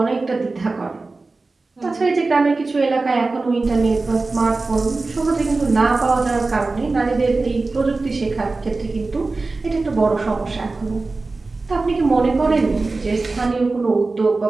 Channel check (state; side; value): quieter; left; 3.6 dB